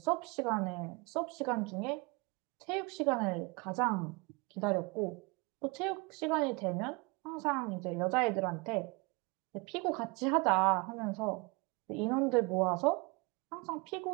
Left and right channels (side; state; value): left; quieter; 27.7 dB